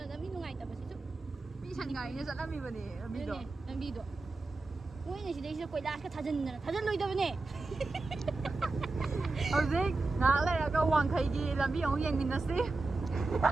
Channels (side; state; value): left; quieter; 3.4 dB